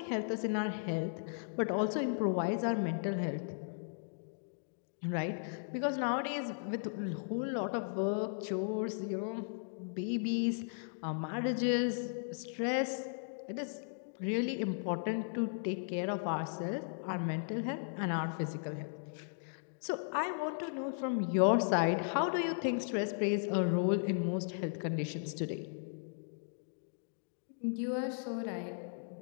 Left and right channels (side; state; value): right; silent; digital silence